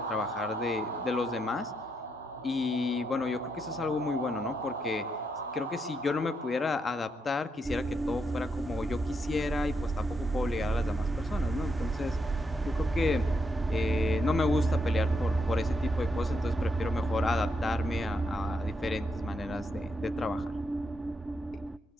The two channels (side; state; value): both; normal; correlation 0.80